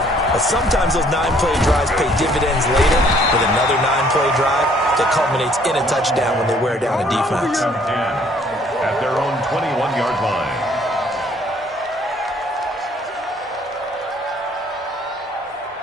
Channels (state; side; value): normal; both; correlation 0.61